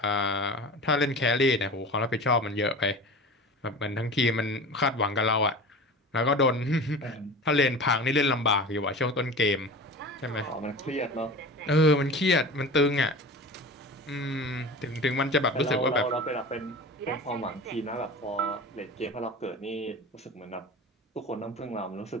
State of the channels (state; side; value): normal; both; correlation 0.34